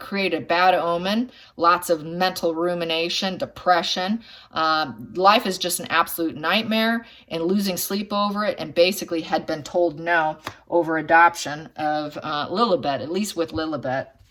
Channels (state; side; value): identical; both; correlation 1.00